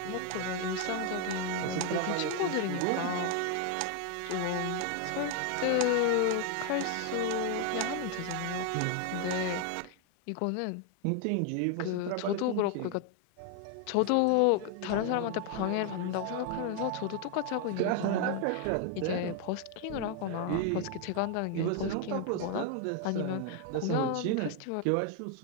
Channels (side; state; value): both; different; correlation 0.01